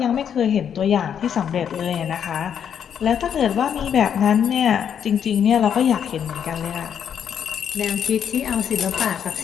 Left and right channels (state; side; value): quieter; right; 8.4 dB